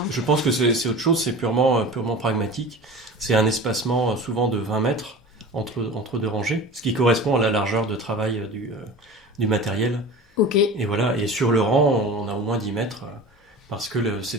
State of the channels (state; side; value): normal; both; correlation 0.36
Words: Je pense que c'est autre chose, c'est purement pragmatique. C'est un espacement souvent de 20 mètres entre 2 rangées, ce qui correspond à la largeur de travail du matériel. Ok. Et voilà, et sur le rang, on a au moins 10 mètres, parce que